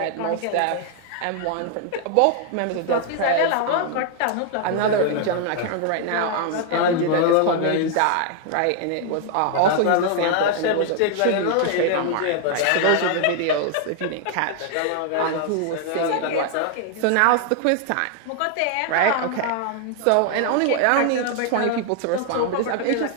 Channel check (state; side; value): different; both; correlation 0.00